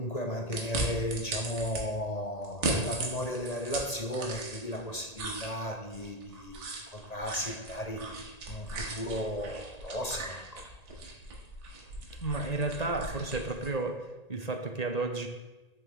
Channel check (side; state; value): right; late; 1.8 ms